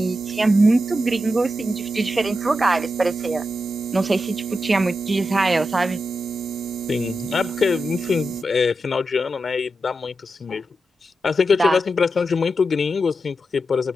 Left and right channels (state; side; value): normal; both; correlation 0.88